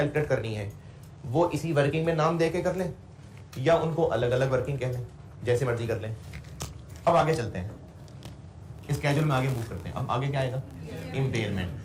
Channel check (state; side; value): identical; both; correlation 1.00